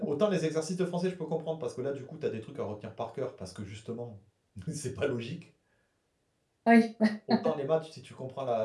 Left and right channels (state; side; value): identical; both; correlation 1.00